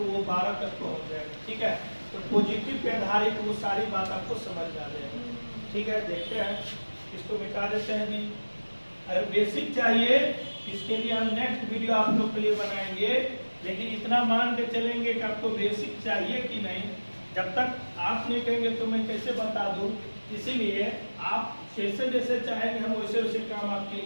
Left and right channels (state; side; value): inverted; both; correlation -1.00